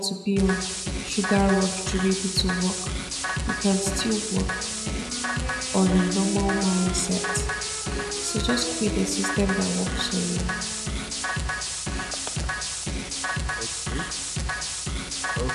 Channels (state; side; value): identical; both; correlation 1.00